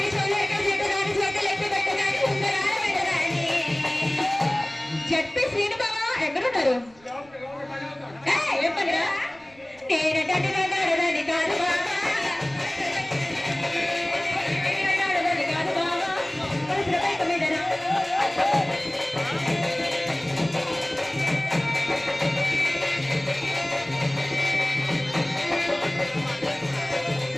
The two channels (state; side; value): noise; right; rumble, 28 dB below the sound